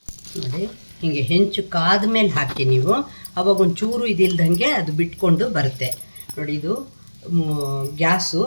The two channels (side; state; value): both; inverted; correlation -1.00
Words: ನೋಡಿ ಹೀಗೆ ಹೆಂಚು ಕಾದ ಮೇಲೆ ಹಾಕಿ ನೀವು, ಅವಾಗ ಒಂಚೂರು ಇದಿಲ್ದಂಗೆ ಅದು ಬಿಟ್ಕೊಂಡು ಬರುತ್ತೆ. ನೋಡಿ ಇದು ಗ್ಯಾಸು